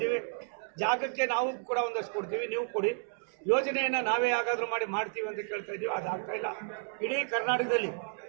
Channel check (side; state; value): left; silent; 57 dB below the other